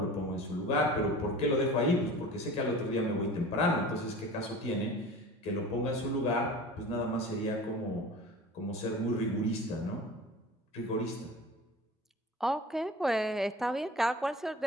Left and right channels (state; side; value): normal; both; correlation 0.38